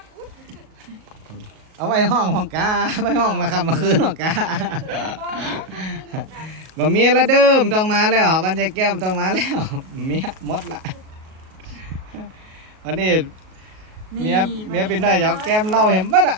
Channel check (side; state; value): left; late; 37 ms